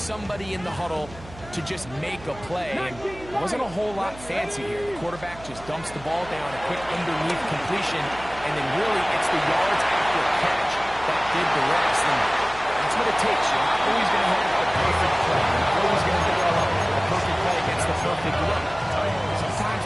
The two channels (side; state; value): right; noise; hum, 18 dB below the sound